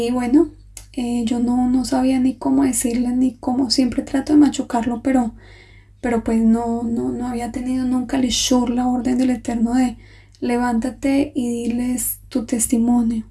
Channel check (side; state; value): both; identical; correlation 1.00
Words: bueno, yo no sabía ni cómo decirle, ni cómo, siempre trato de machucarlo, pero pues no había tenido nunca el ishur, la orden del Eterno de levántate y diles tu testimonio.